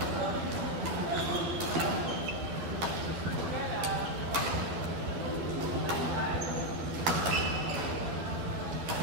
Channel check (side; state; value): left; late; 12 ms